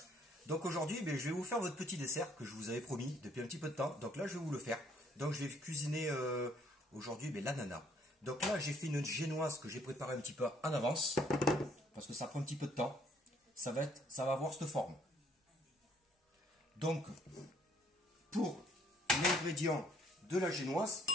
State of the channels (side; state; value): both; normal; correlation 0.64